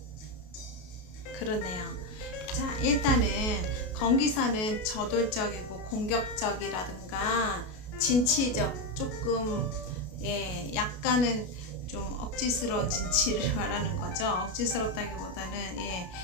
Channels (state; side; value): late; right; 33 ms